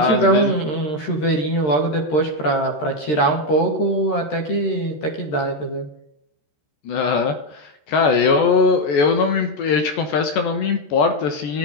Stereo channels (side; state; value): right; late; 13 ms